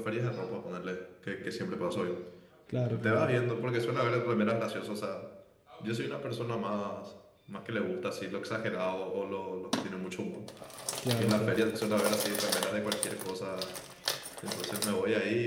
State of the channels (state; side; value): identical; both; correlation 1.00